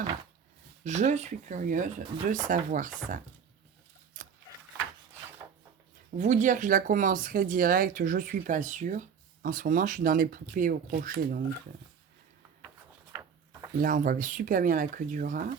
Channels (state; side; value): quieter; left; 7.0 dB